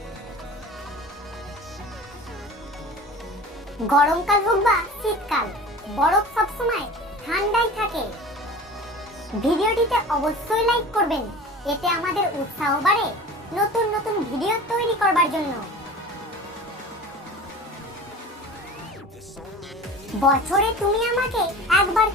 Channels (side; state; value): both; normal; correlation 0.38